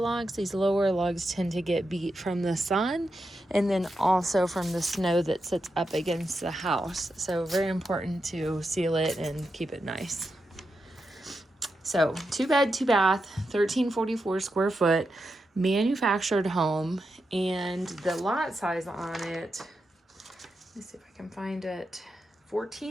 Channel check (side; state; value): both; normal; correlation 0.87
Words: These lower logs tend to get beat from the sun and then also from the snow that sits up against the house. So very important to seal it and keep it nice. So 2 bed, 2 bath, 1344 square foot, manufactured home, and the lot size on it, let me see if I can find it,